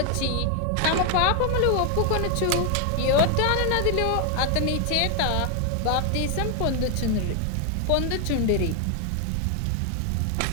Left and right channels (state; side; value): different; both; correlation 0.01